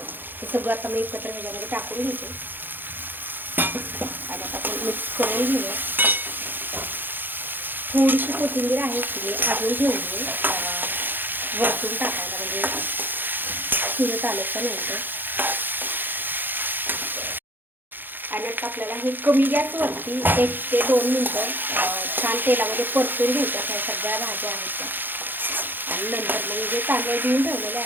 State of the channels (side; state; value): left; late; 0.092 ms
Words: हे सगळं आता मी एकत्र ह्याच्यामध्ये टाकून घेते. आणि आता आपण मिक्स करून घेऊया. थोडीशी कोथिंबीर आहे ती अजून घेऊन वरतून टाकायला, म्हणजे शिजत आल्याच्या नंतर. आणि आता आपल्याला हे कमी गॅसवरती 1 ते 2 मिनटं छान तेलामध्ये परतून घ्यायच्या. त्या सगळ्या भाज्या आहेत त्या. आणि नंतर मग जे तांदूळ धुवून ठेवलेले